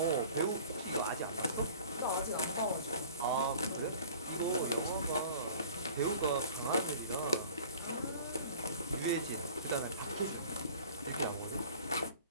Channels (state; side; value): inverted; both; correlation -0.46